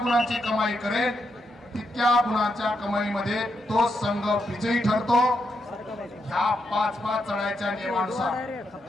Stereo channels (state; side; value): normal; both; correlation 0.81